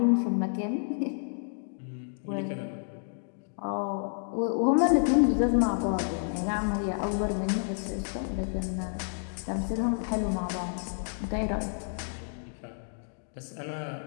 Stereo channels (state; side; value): silent; right; digital silence